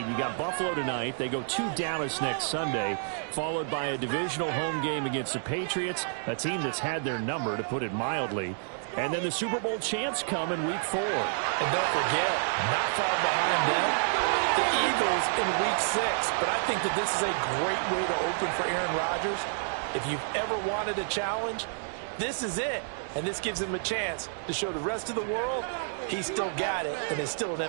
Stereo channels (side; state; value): left; silent; digital silence